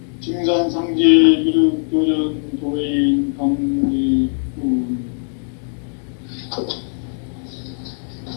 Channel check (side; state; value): right; silent; 66 dB below the other